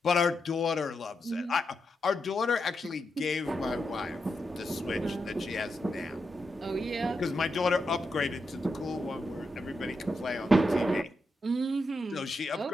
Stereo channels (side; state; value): both; normal; correlation 0.85